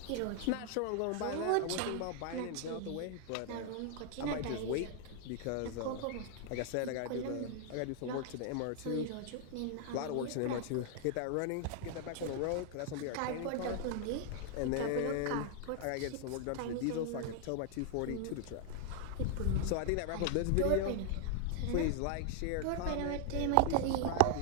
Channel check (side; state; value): both; different; correlation 0.00